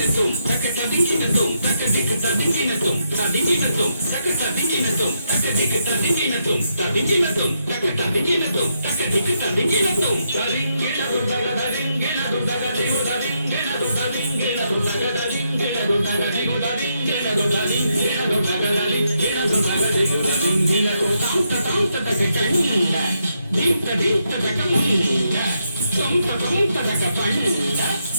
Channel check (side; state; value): both; inverted; correlation -0.80